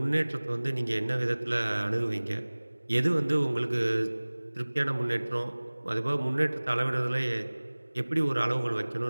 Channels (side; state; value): both; inverted; correlation -1.00